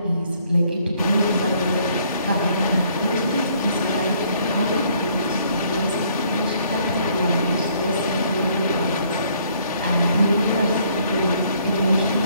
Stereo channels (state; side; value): inverted; both; correlation -0.64